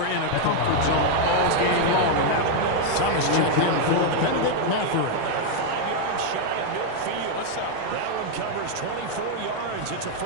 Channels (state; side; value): different; both; correlation 0.00